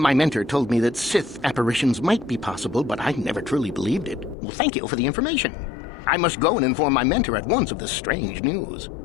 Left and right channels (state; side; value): drops out; right; at 4.4 s